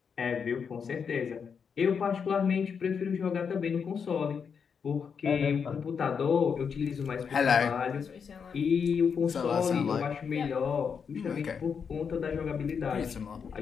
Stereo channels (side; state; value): right; quieter; 6.5 dB